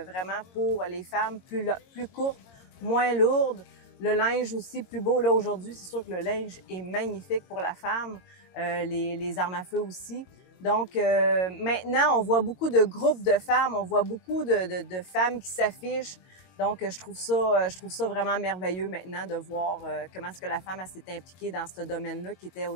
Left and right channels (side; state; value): right; late; 22 ms